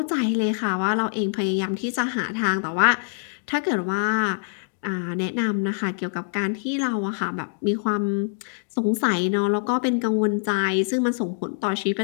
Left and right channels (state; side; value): silent; right; digital silence